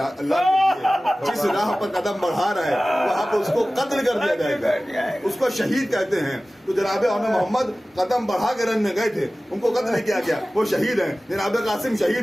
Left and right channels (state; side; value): normal; both; correlation 0.97